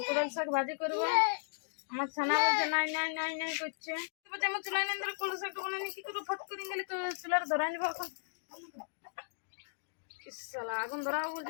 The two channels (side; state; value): right; silent; digital silence